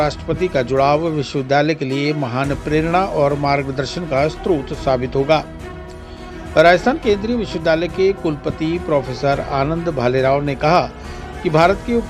का जुड़ाव विश्वविद्यालय के लिए महान प्रेरणा और मार्गदर्शन का स्रोत साबित होगा। राजस्थान केंद्रीय विश्वविद्यालय के कुलपति प्रोफेसर आनंद भालेराव ने कहा कि भारत के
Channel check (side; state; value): both; identical; correlation 1.00